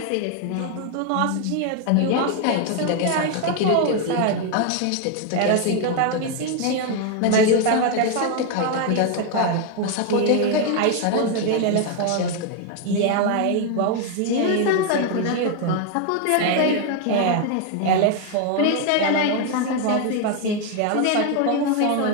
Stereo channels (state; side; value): different; both; correlation 0.01